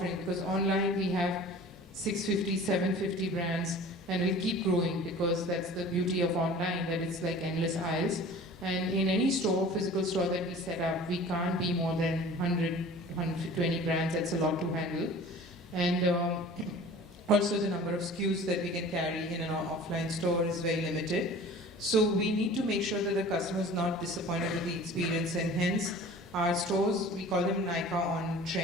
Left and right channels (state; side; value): normal; both; correlation 0.43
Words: because online we have 650, 750 brands, and we'll keep growing because that's the beauty of online, that it's like endless aisles. And in any store, physical store that we set up, we can't be more than 100, 120 brands. That's a lot to handle. And also the number of SKUs that we can carry in an offline store is very limited. So we need to make sure that the customer is not disappointed with the experience, and hence our stores, we call them Nykaa On